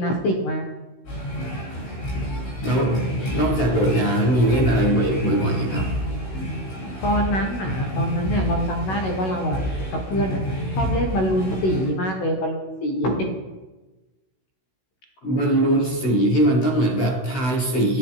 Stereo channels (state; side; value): late; right; 16 ms